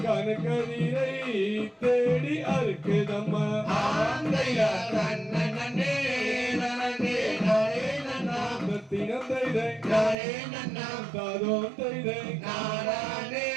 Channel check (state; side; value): drops out; left; at 10.2 s